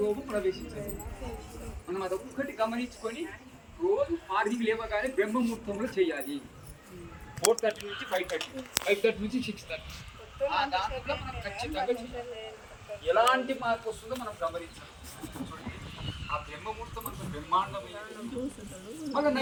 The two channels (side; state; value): both; identical; correlation 1.00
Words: రోగం ప్రవేశించాలి మనం అదొక్కటి గమనించుకొని రోజు మార్నింగ్ లేవగానే బ్రహ్మముహూర్తంలో చేయాలి. 4:30 నుంచి 5:30, 5:30 నుంచి 6:30. దాంట్లో మనం ఖచ్చితంగా చేయాలి. ఎలాంటి మార్పు వస్తుందో మనం గమనించాలి. ఆ బ్రహ్మముహూర్తం అంత బ్రహ్మాండమైనది. మళ్ళీ